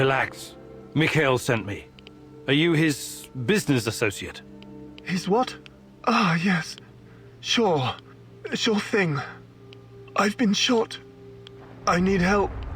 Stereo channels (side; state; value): both; identical; correlation 1.00